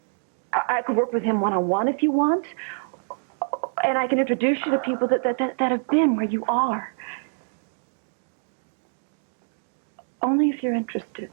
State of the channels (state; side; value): silent; left; digital silence